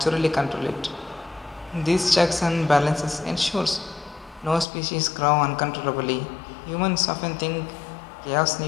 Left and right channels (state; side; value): drops out; right; at 4.7 s